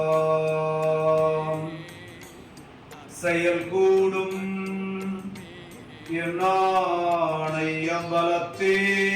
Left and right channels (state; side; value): identical; both; correlation 1.00